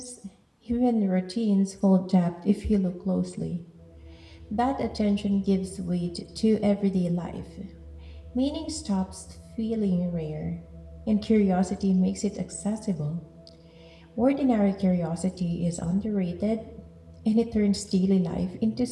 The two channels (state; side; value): identical; both; correlation 1.00